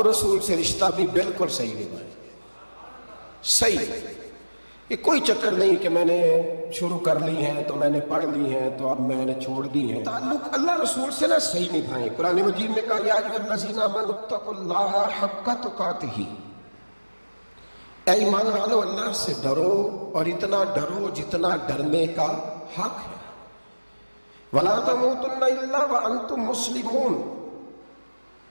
رسول سے رشتہ بھی بالکل صحیح نبھائیں۔ صحیح، یہ کوئی چکر نہیں کہ میں نے شروع کر لی ہے تو میں نے پڑھ لی ہے تو اب میں نے چھوڑ دی ہے۔ تعلق اللہ رسول سے نہ صحیح نبھائیں۔ قرآن مجید نے کہا، یا ایھا الذین آمنوا اتقوا اللہ حق تقاتہ، اے ایمان والو اللہ سے ڈرو اور اتنا ڈرو جتنا ڈرنے کا حق ہے۔ ولا تموتن الا وانتم مسلمون،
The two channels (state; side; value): inverted; both; correlation -1.00